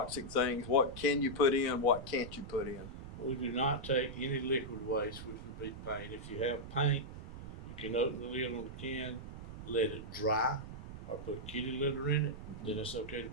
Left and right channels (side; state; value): right; noise; rumble, 11 dB below the sound